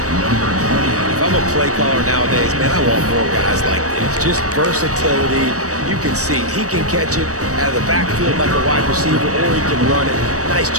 If I'm a play caller nowadays, man, I want more guys like this. Just versatility. You can see he can catch it out of the backfield like a wide receiver, or he can run it. Nice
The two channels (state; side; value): late; left; 0.66 ms